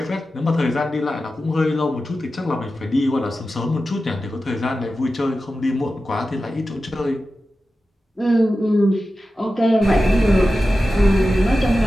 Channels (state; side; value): normal; both; correlation 0.93